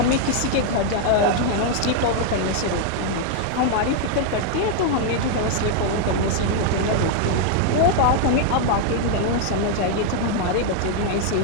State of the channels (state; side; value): different; both; correlation 0.00